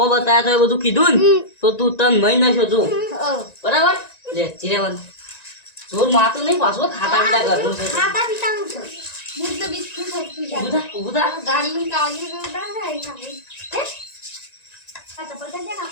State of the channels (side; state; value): right; late; 1.9 ms